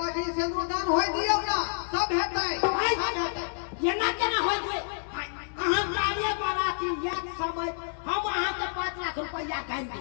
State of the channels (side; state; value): right; silent; digital silence